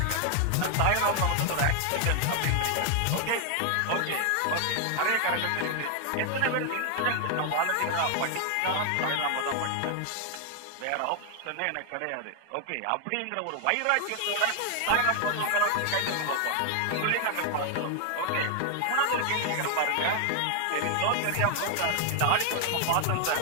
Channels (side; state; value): both; different; correlation 0.00